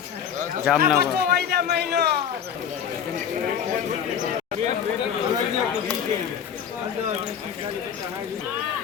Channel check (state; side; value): quieter; right; 8.3 dB